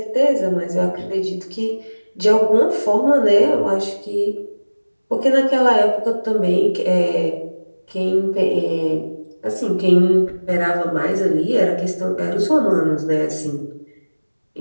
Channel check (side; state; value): both; inverted; correlation -1.00